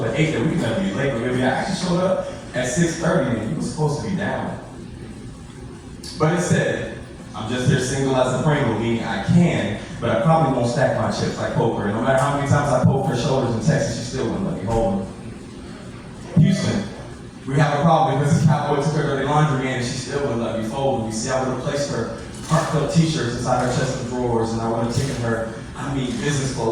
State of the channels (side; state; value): both; identical; correlation 1.00